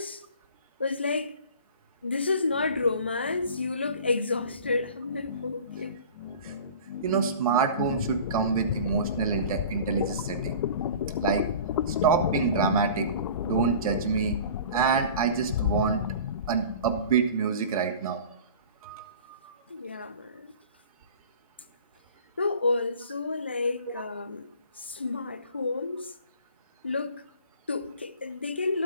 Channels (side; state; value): both; inverted; correlation -0.42